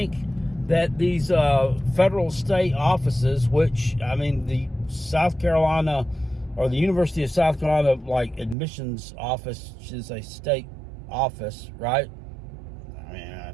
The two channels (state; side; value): drops out; left; at 8.6 s